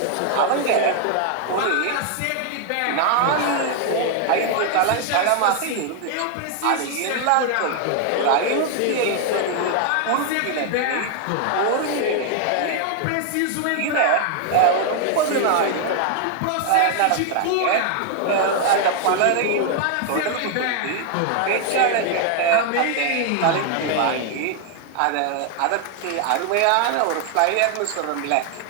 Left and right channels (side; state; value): both; different; correlation 0.00